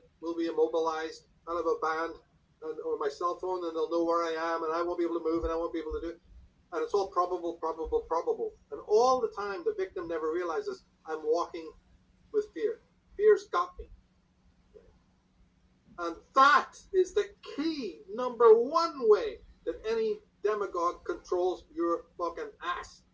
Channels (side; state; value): both; identical; correlation 1.00